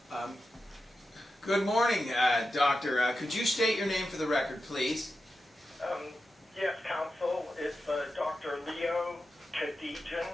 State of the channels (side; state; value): both; normal; correlation 0.90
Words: Good morning, Doctor. Could you state your name for the record, please? Yes, counsel. It's Dr. Leo Kadijan.